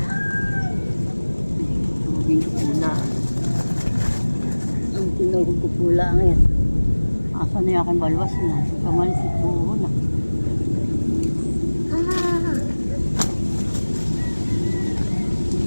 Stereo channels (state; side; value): inverted; both; correlation -1.00